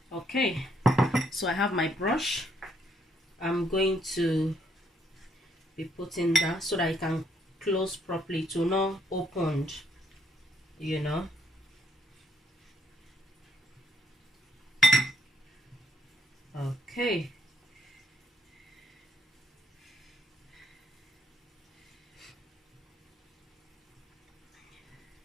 Okay, so I have my brush. I'm going to be putting that so that it can close properly, to not opened, you know. Okay.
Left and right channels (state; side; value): normal; both; correlation 0.72